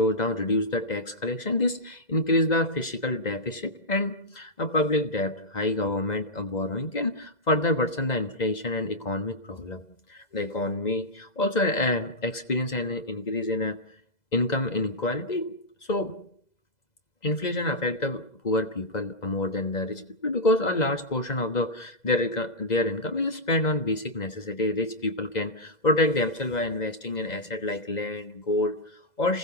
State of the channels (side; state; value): right; late; 2.0 ms